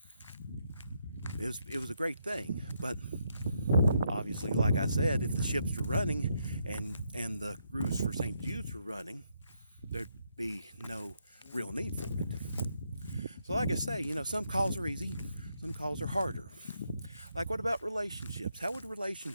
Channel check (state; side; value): inverted; both; correlation -0.78